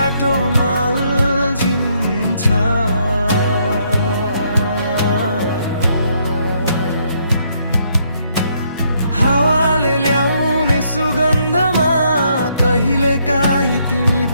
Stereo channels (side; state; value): both; inverted; correlation -0.72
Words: अल्झिन्छ। हावाले ल्याउने सुगन्धमा कहिलेकाहीँ तिमी